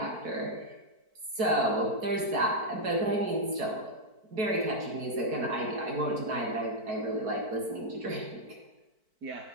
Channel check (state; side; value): late; left; 4.5 ms